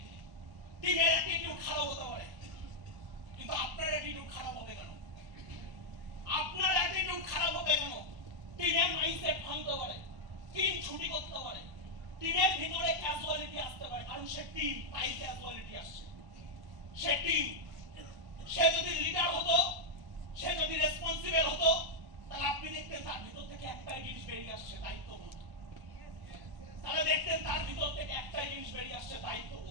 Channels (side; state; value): left; late; 1.1 ms